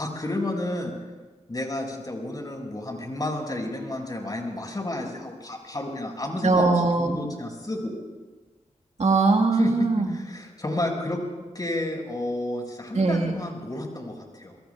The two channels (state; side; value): normal; both; correlation 0.74